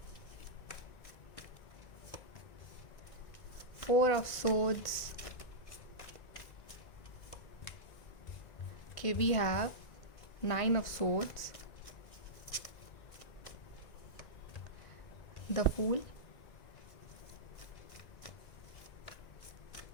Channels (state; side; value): late; right; 1.9 ms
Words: Four of Swords. Okay, we have Nine of Swords, the Fool,